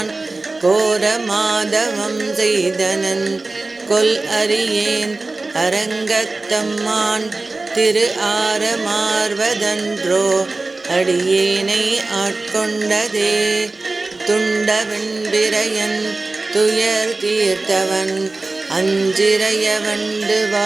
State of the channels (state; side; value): quieter; left; 3.3 dB